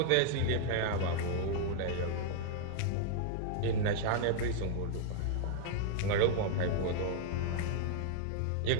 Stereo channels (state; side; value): different; both; correlation -0.01